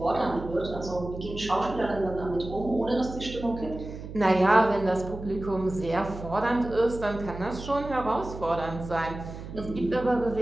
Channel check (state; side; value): noise; right; hum, 11 dB below the sound